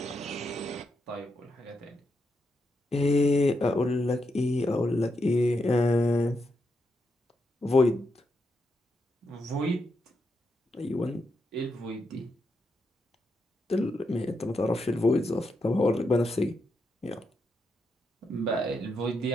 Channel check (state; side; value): normal; both; correlation 0.83